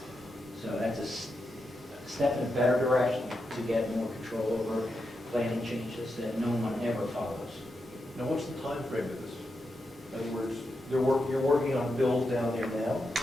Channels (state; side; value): normal; both; correlation 0.86